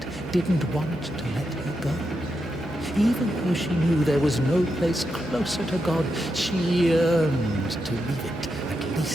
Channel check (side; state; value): both; normal; correlation 0.85